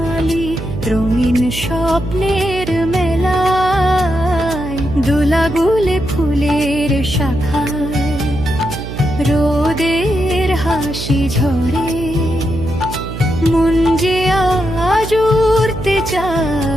রঙিন স্বপ্নের মেলায় দোলাগুলে ফুলের শাখায় রোদের হাসি ঝরে মন যে আজ উড়তে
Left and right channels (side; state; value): right; noise; hum, 9 dB below the sound